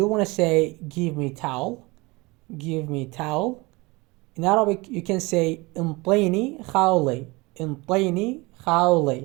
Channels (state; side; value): quieter; left; 24.1 dB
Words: want to say give me towel. Give me towel. In Arabic, you can say انطيني خاولي. انطيني